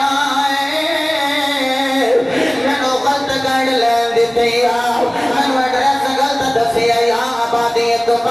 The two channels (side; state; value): right; noise; hum, 28 dB below the sound